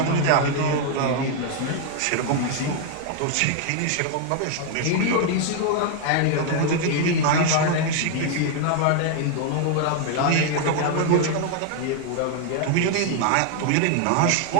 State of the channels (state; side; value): different; both; correlation 0.00